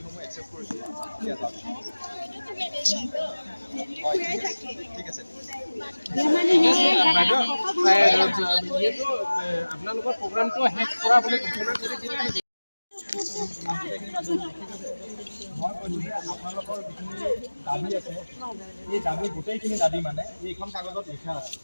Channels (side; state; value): both; inverted; correlation -1.00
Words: একচেপ্ট কৰিছোঁ এতিয়া যাওক হয় ঠিক আছে আপোনালোকৰ প্ৰগ্ৰামটো শেষ কৰা বুলি ঘোষণা কৰি দিলে মই কৈছোঁ যে আপোনালোকৰ যিখিনি দাবী আছে এই দাবী গোটেইখিনি দাবী মানে এইখন কাগজত লিখা আছে